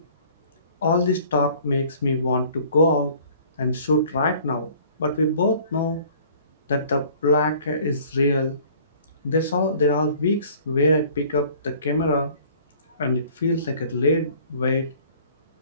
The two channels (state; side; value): inverted; both; correlation -0.53